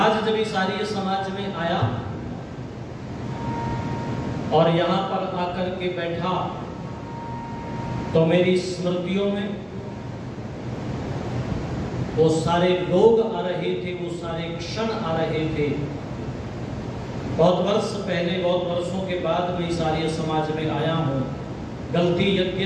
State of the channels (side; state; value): both; identical; correlation 1.00